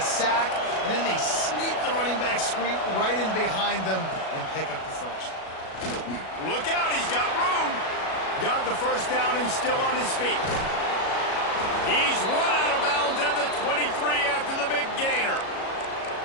sack, and then they sneak the running back screen right in behind them and pick up the first. Look out, he's got room. Got the first down and still on his feet. He's run out of bounds at the 23 after the big gainer.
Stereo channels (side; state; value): right; late; 37 ms